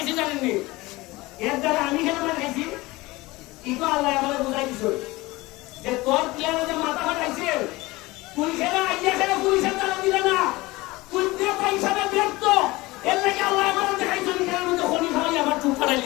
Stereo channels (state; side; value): quieter; right; 21.0 dB